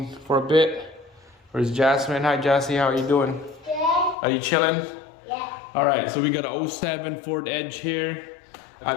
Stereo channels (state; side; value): drops out; right; at 4.2 s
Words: for a bit. Where's Jasmine? Hi Jassy, how are you doing? Good. Are you chilling? Yeah. Alright, so we got a 07 Ford Edge here.